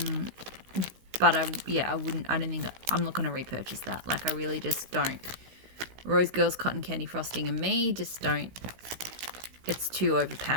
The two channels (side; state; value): left; late; 16 ms